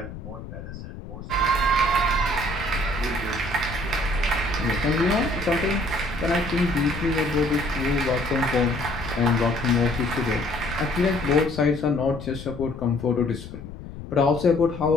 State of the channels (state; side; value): noise; left; rumble, 12 dB below the sound